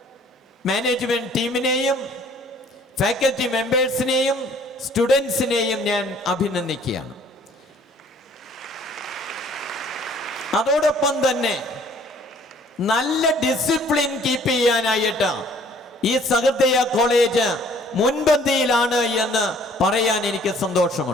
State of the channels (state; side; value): normal; both; correlation 0.57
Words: മാനേജ്മെന്റ് ടീമിനെയും ഫാക്കൽറ്റി മെമ്പേഴ്സിനെയും സ്റ്റുഡൻസിനെയും ഞാൻ അഭിനന്ദിക്കുകയാണ്. അതോടൊപ്പം തന്നെ നല്ല ഡിസിപ്ലിൻ കീപ്പ് ചെയ്യാനായിട്ട് ഈ സഹൃദയ കോളേജ് മുൻപന്തിയിലാണ് എന്ന് പറയാൻ എനിക്ക്